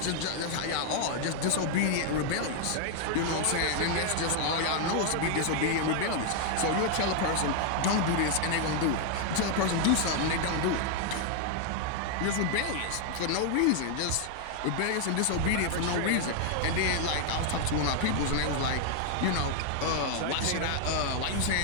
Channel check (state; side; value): different; both; correlation 0.00